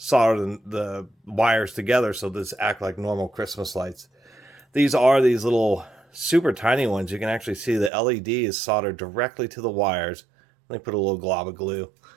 the wires together so this act like normal Christmas lights. These are these little super tiny ones. You can actually see the LED is soldered directly to the wires. They put a little glob of glue.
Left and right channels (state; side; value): drops out; left; at 7.9 s